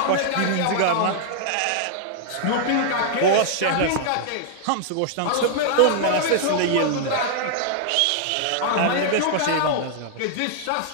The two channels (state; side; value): different; both; correlation -0.01